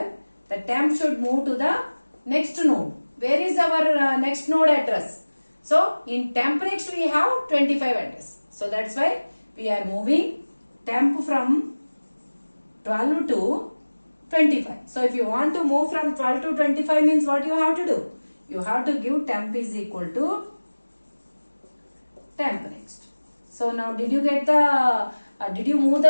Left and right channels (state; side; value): inverted; both; correlation -1.00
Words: the temp should move to the next node. Where is our next node address? So in temp next we have 25 address. So that's why we are moving temp from 12 to 25. So if you want to move from 12 to 25 means what you have to do? You have to give temp is equal to temp next. So now did you get the, did you move